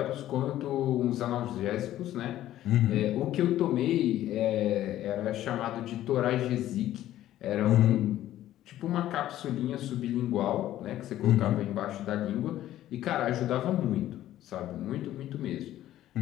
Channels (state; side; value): quieter; right; 13.4 dB